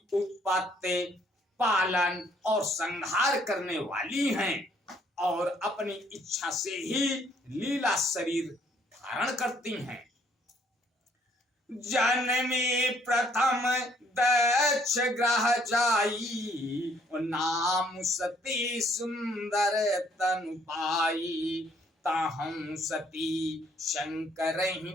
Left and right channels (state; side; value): normal; both; correlation 0.65